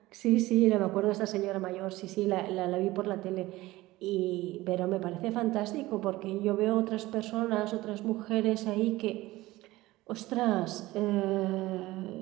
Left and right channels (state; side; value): quieter; left; 18.4 dB